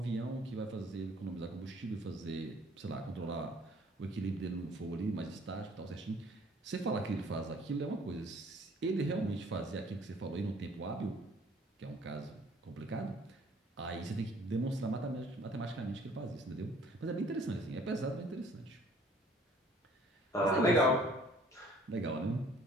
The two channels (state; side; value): normal; both; correlation 0.56